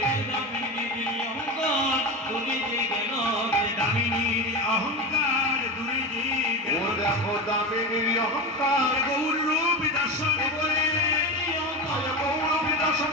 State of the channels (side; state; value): both; normal; correlation 0.22